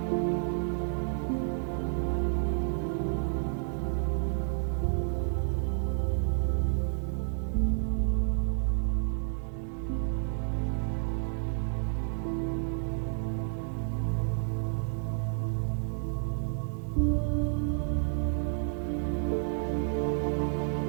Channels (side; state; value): left; silent; digital silence